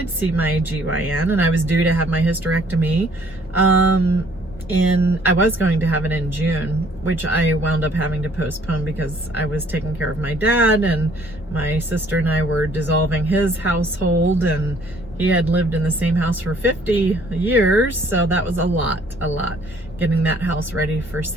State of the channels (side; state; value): both; normal; correlation 0.60